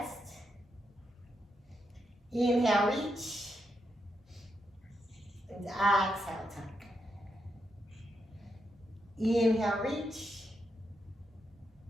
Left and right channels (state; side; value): normal; both; correlation 0.82